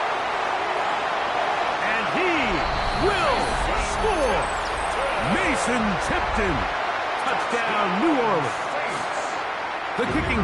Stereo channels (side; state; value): both; identical; correlation 1.00